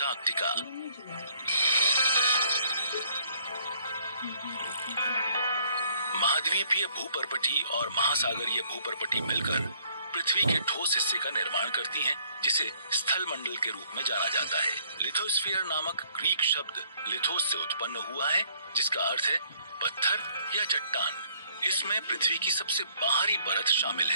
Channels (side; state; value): both; inverted; correlation -0.65